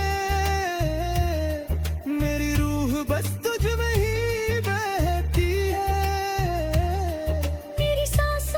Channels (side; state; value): both; identical; correlation 1.00